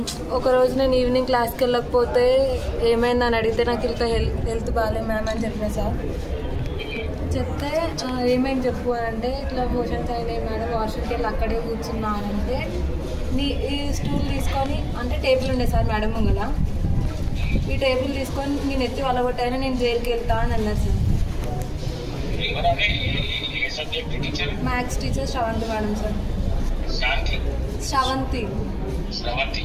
ఒకరోజు నేను ఈవినింగ్ క్లాస్కి వెళ్ళకపోతే ఏమైందని అడిగితే నాకు ఇంకా హెల్త్ బాగాలేదు మ్యామ్ అని చెప్పిన సార్. చెప్తే ఏమైంది చెప్పు అని అంటే ఇట్లా మోషన్స్ అయినాయి మేడం, వాష్రూమ్కి వెళ్ళి అక్కడే కూర్చున్నా అని అంటే ఈ స్టూల్ తీసుకొని అంటే టేబుల్ ఉండే సార్ మేడం ముంగల, ఈ టేబుల్ తీసుకొని నేను ఎత్తి వలగొట్టాయని నేను జైలుకి వెళ్తా అని అన్నారు sir. Maths teacher Sravanthi madam sir. Sravanthi.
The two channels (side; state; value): both; identical; correlation 1.00